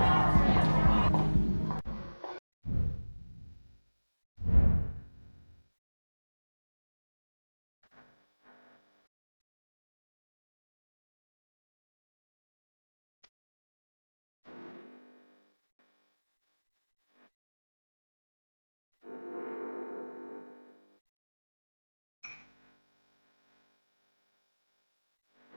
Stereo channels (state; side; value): inverted; both; correlation -1.00